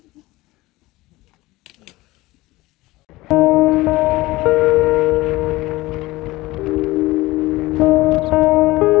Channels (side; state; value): right; quieter; 19.5 dB